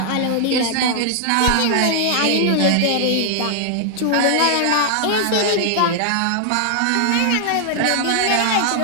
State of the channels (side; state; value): both; different; correlation 0.00